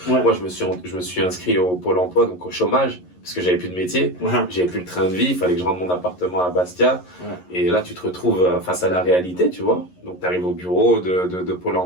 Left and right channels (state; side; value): late; right; 11 ms